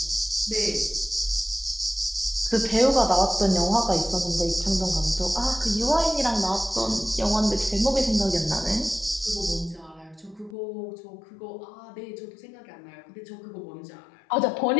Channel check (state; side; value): drops out; right; at 10.6 s